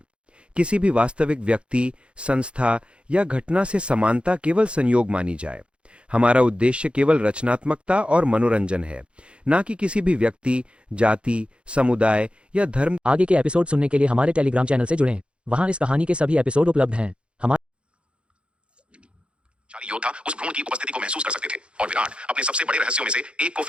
किसी भी वास्तविक व्यक्ति, संस्था या घटना से समानता केवल संयोग मानी जाए। हमारा उद्देश्य केवल रचनात्मकता और मनोरंजन है, न कि किसी भी व्यक्ति, जाति, समुदाय या धर्म। आगे के एपिसोड सुनने के लिए हमारे टेलीग्राम चैनल से जुड़ें। वहां इस कहानी के सभी एपिसोड उपलब्ध हैं। योद्धा उस भ्रूण की उपस्थिति को महसूस कर सकते थे और विराट अपने सबसे बड़े रहस्यों में से एक को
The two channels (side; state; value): left; late; 0.058 ms